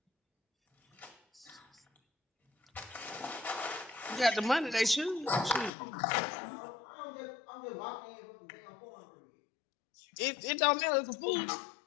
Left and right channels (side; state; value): right; drops out; at 5.7 s